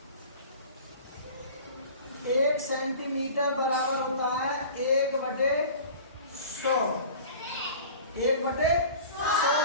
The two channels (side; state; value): both; inverted; correlation -0.41